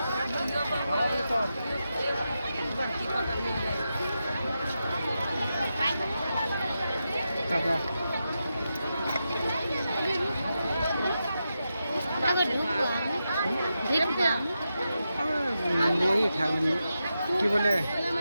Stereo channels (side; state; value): both; inverted; correlation -0.88